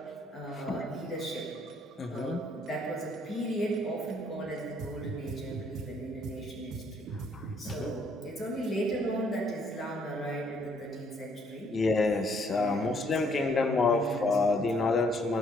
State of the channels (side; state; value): both; normal; correlation 0.66